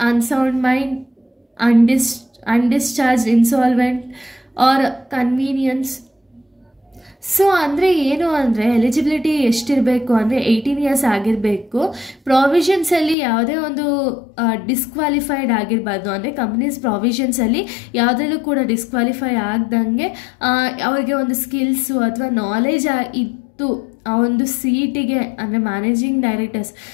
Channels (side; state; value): right; drops out; at 13.2 s